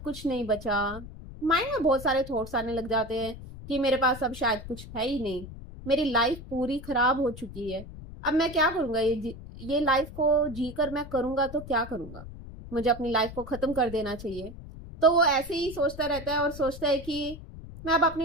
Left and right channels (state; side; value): noise; left; rumble, 13 dB below the sound